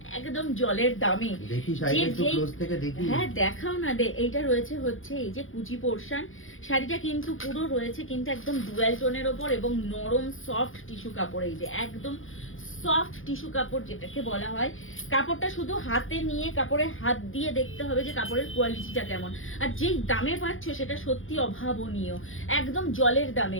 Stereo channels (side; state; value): right; late; 0.59 ms